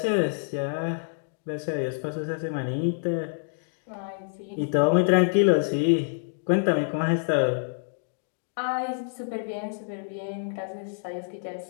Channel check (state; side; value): silent; right; digital silence